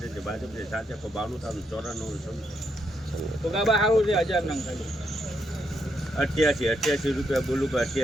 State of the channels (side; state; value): both; normal; correlation 0.79